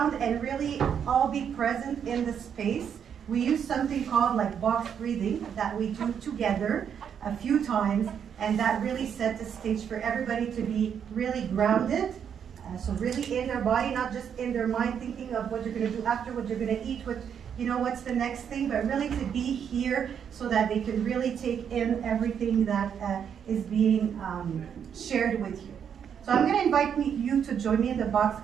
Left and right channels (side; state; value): left; quieter; 8.0 dB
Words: and really all be present in the space, we use something called like box breathing that we do together a few times, and that really set the stage for everybody to be really grounded. So really in their body, not just in their mind thinking of what you're going to do after, what you're going to eat, what, you know, what's the next thing, but really to be here so that they can really take in everything that is being shared with you. So I'm going to invite you to join me in the box